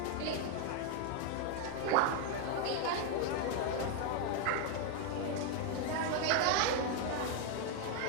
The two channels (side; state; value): both; different; correlation 0.01